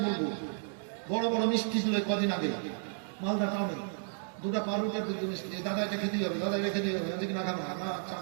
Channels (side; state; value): left; silent; digital silence